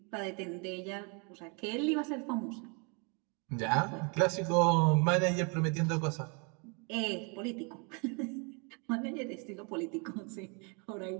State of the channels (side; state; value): left; quieter; 34.3 dB